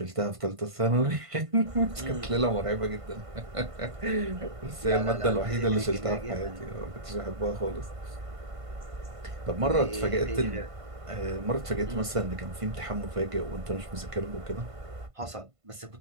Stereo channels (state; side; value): late; left; 1.5 ms